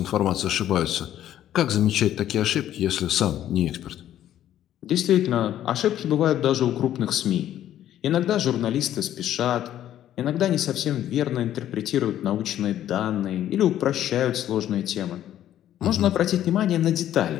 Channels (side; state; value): right; quieter; 11.8 dB